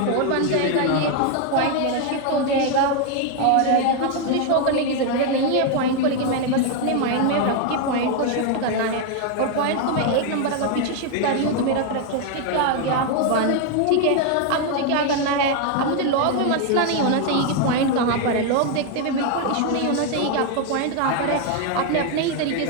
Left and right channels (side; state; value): both; different; correlation 0.01